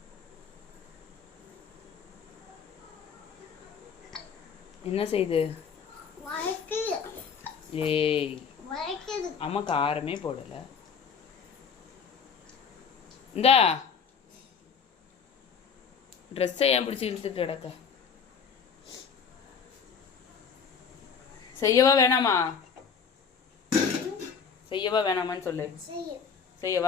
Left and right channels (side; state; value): right; quieter; 6.4 dB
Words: என்ன செய்யுது? ஏய் அம்மா காரமே போடல. இந்தா ட்ரெஸ்ஸை ஏன் பிடிச்சி இழுத்துட்டு கிடக்க? செய்யவா வேணாமா? செய்யவா வேணாமான்னு சொல்லு.